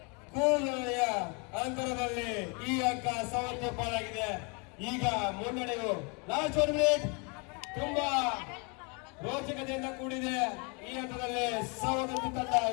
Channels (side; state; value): right; quieter; 33.1 dB